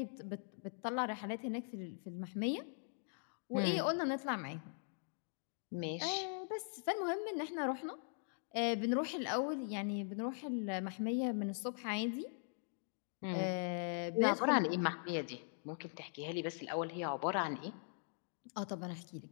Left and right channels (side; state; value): right; silent; digital silence